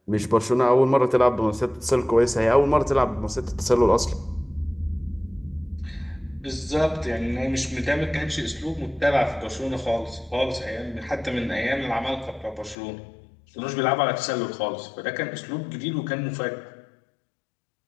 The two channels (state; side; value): drops out; right; at 12.8 s